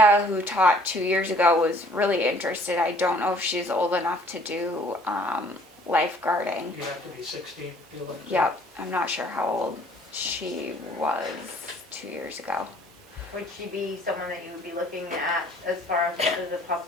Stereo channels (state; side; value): normal; both; correlation 0.57